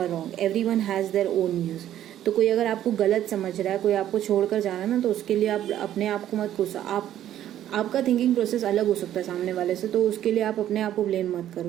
wrong, everyone has their own views. तो कोई अगर आपको गलत समझ रहा है, कोई आपको छोड़कर जा रहा है ना, तो उसके लिए आप अपने आप को मत कोसो। आपका थिंकिंग प्रोसेस अलग हो सकता है सामने वाले से, तो उसके लिए आप अपने आप को ब्लेम मत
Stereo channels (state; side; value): quieter; left; 11.8 dB